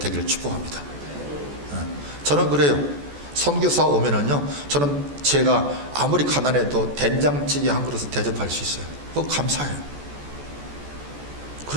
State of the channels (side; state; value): left; late; 14 ms